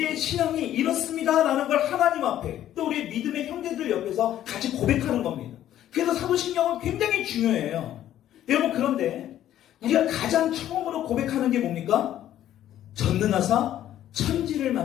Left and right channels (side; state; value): right; quieter; 12.0 dB